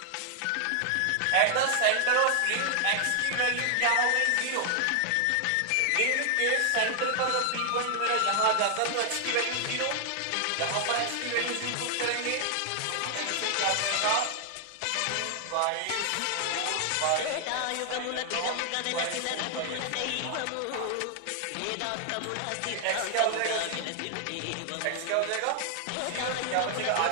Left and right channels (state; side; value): different; both; correlation 0.00